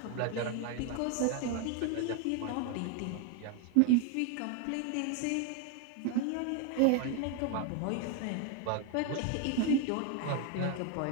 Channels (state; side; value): different; both; correlation 0.01